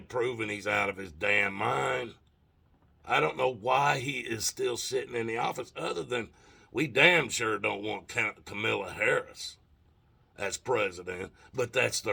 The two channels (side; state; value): both; identical; correlation 1.00